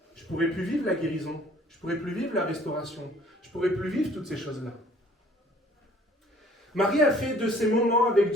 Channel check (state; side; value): normal; both; correlation 0.56